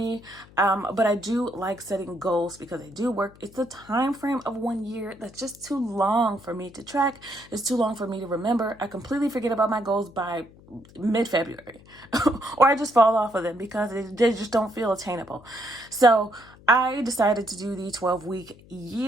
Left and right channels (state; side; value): noise; left; hum, 24 dB below the sound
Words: But I do like setting goals because they do work. It's a time frame of 1 year that's just too long for me to track. It's too long for me to remember. I completely forget about my goals by mid-February or I just fall off of them because they just don't feel attainable. So I decided to do the 12-week